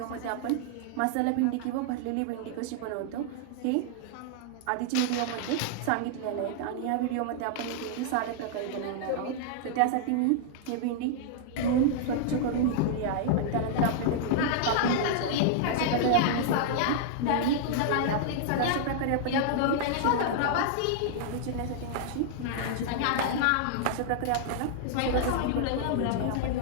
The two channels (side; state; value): both; different; correlation -0.01